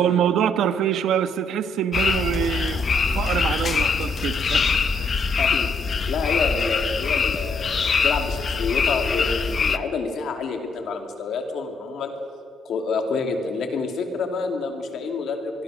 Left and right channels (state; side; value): normal; both; correlation 0.72